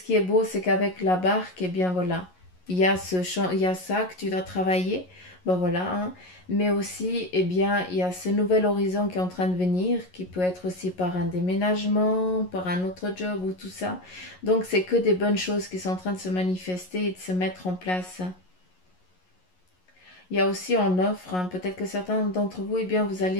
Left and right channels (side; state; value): right; late; 11 ms